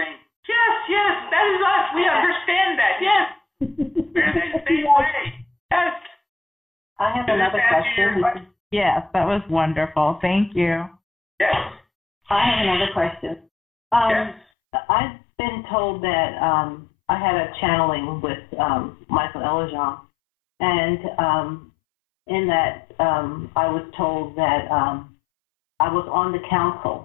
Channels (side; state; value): right; drops out; at 14.4 s